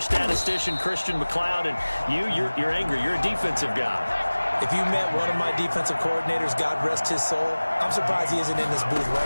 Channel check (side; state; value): both; inverted; correlation -1.00